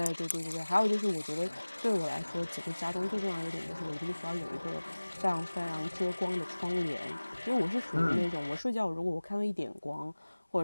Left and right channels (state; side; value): inverted; both; correlation -1.00